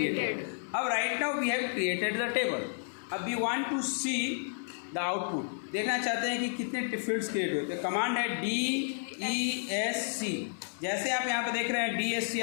अब right now we have created the table. अब we want to see the output. देखना चाहते हैं कि कितने fields create हुए. तो कमांड है DESC. जैसे आप यहाँ पे देख रहे हैं DSC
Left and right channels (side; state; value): right; silent; 57 dB below the other